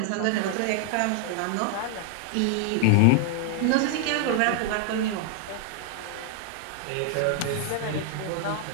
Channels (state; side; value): different; both; correlation 0.00